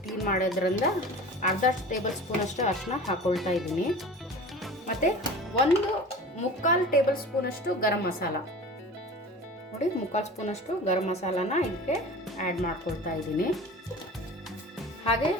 ಕ್ಲೀನ್ ಮಾಡೋದ್ರಿಂದ ಅರ್ಧ ಟೇಬಲ್ ಸ್ಪೂನ್ ಅಷ್ಟು ಅರಿಶಿನ ಹಾಕ್ಕೊಳ್ತಾ ಇದ್ದೀನಿ. ಮತ್ತು ಒಂದು 3/4 ಟೇಬಲ್ ಸ್ಪೂನ್ ಅಷ್ಟು ಗರಂ ಮಸಾಲ, ನೋಡಿ 3/4 ಸ್ಪೂನ್ ಅಷ್ಟು ಗರಂ ಮಸಾಲಾನ ಇದಕ್ಕೆ ಆ್ಯಡ್ ಮಾಡ್ಕೊಳ್ತಾ ಇದ್ದೀನಿ. ಹಾಗೆ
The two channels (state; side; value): normal; both; correlation 0.38